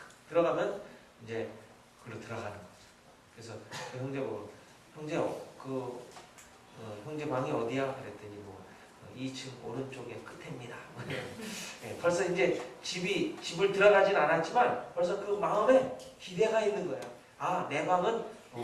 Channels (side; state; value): both; identical; correlation 1.00